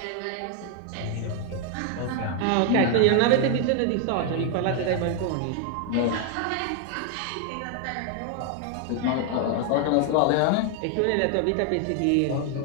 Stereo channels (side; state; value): both; different; correlation 0.00